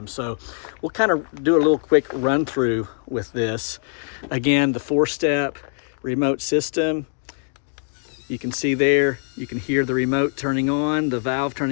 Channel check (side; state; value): right; silent; digital silence